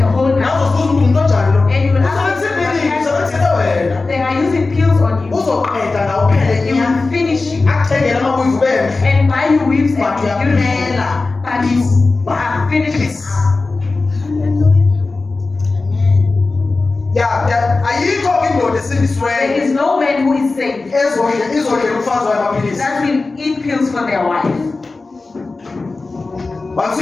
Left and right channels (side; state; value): right; quieter; 3.6 dB